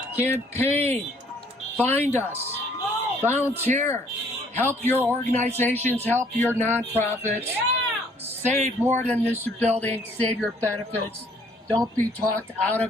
Campaign. Find us. Volunteer. Help your organizations. Help your nonprofits. Save more than this building. Save your benefits. Don't be talked out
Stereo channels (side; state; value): both; normal; correlation 0.62